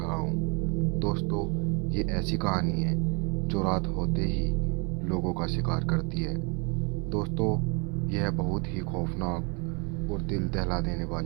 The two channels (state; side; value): quieter; left; 33.3 dB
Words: हूँ। दोस्तों, ये ऐसी कहानी है जो रात होते ही लोगों का शिकार करती है। दोस्तों, यह बहुत ही खौफनाक और दिल दहला देने